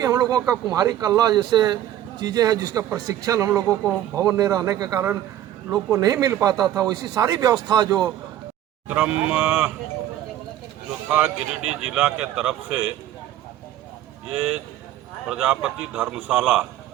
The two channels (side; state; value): left; quieter; 12.4 dB